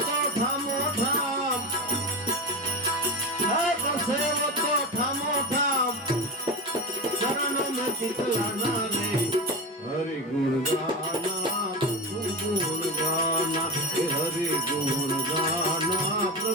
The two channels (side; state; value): both; normal; correlation 0.22